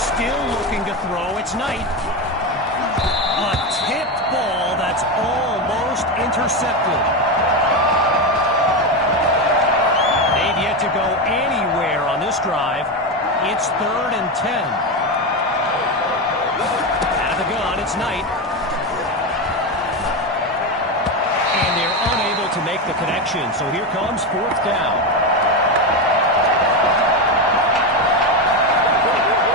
looking to throw. It's Knight. A tipped ball that's almost intercepted. They've yet to go anywhere on this drive. It's 3rd and 10. Out of the gun, it's Knight. To make the connection. So here comes fourth down.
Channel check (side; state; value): both; normal; correlation 0.14